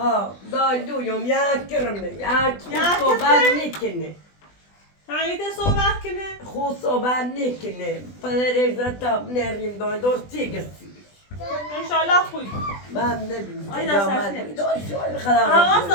دایلویم یک کرمه یک خود صحبت نکنه همیته صحبت کنه؟ خود صحبت نکنه پدر تا نریم درستی گسی انشالله خوب من نبینم آیدا سرسنه خدا حواست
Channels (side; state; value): right; late; 20 ms